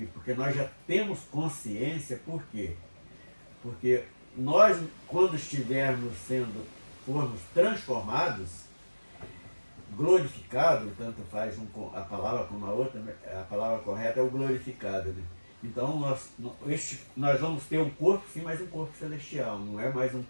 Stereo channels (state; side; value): inverted; both; correlation -1.00